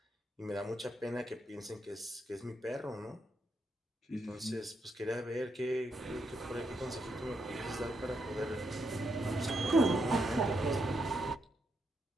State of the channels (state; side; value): normal; both; correlation 0.80